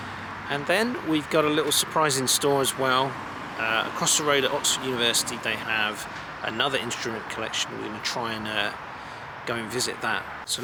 And then we've got a little surprise in store as well. Across the road at Oxford University they have another instrument collection. We're going to try and go and visit that. So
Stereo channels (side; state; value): both; identical; correlation 1.00